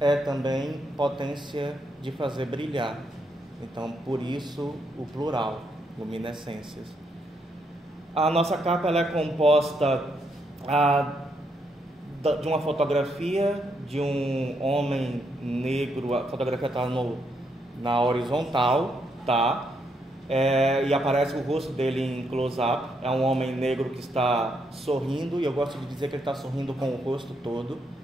também potência de fazer brilhar. Então por isso o plural, luminescências. A nossa capa ela é composta de uma fotografia de um homem negro. A fotografia está na horizontal, tá? E aparece o rosto dele em close-up. É um homem negro que está sorrindo, e eu gosto de dizer que ele está sorrindo com o rosto todo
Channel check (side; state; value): both; normal; correlation 0.77